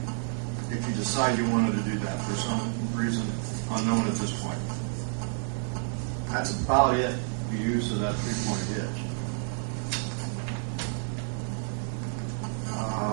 If you decide you wanted to do that for some reason unknown at this point. That's about it. The use of that 3-point hitch.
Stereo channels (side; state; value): left; silent; digital silence